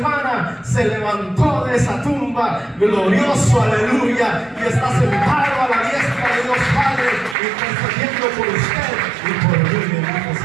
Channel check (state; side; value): drops out; left; at 7.4 s